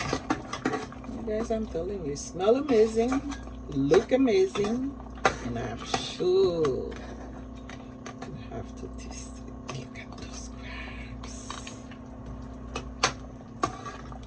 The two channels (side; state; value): both; identical; correlation 1.00